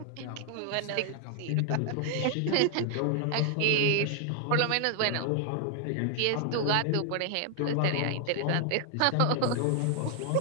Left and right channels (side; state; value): both; different; correlation 0.00